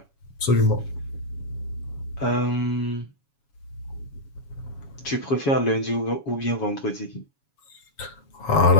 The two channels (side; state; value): right; late; 7.2 ms